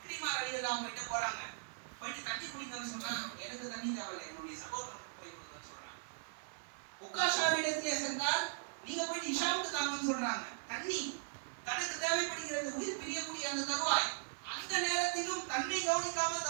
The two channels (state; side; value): silent; left; 52 dB below the other